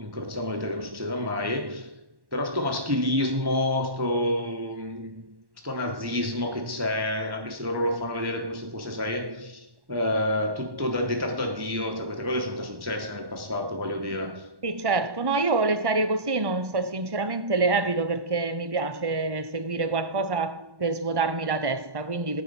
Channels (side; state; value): left; late; 1.1 ms